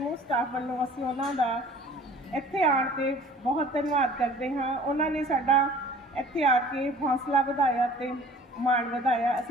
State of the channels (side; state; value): both; normal; correlation 0.48